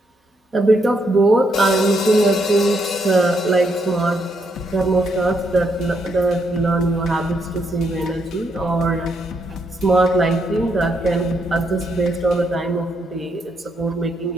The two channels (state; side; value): normal; both; correlation 0.77